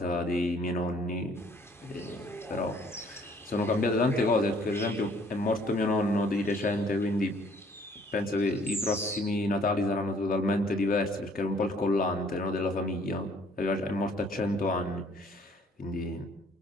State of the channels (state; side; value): normal; both; correlation 0.60